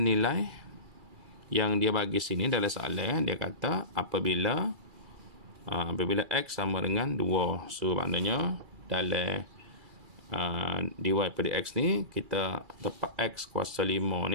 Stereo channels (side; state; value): left; late; 2.3 ms